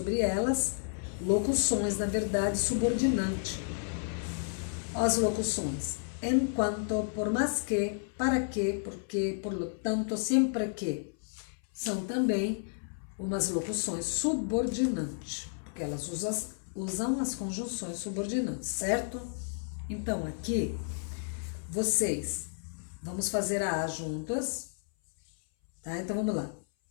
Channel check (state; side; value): silent; right; 57 dB below the other